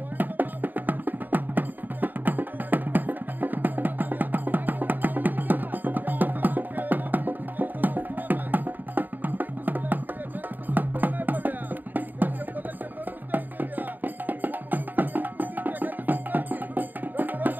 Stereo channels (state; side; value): late; left; 0.089 ms